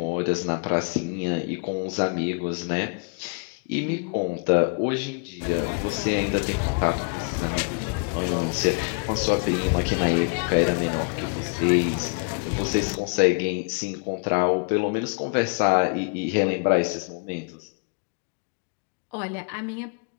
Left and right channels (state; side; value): quieter; right; 37.3 dB